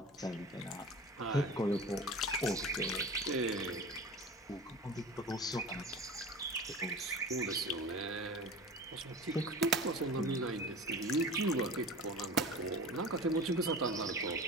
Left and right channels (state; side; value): normal; both; correlation 0.35